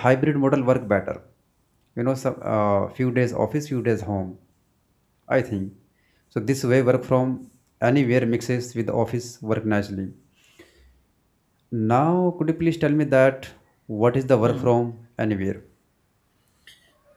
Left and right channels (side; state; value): both; identical; correlation 1.00